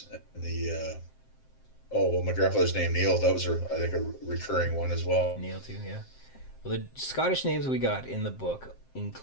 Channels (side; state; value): right; late; 7.6 ms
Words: And my grandfather's name Neil. That was I think a recurring one as well. Neil too, yeah. Well, the Scottish names we got in the book